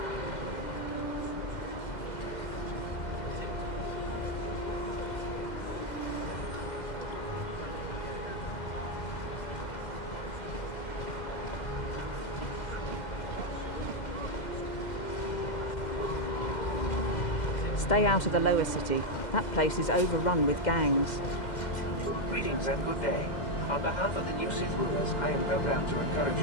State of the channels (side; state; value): right; late; 2.0 ms